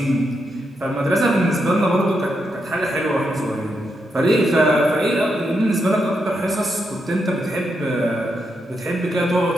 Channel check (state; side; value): normal; both; correlation 0.83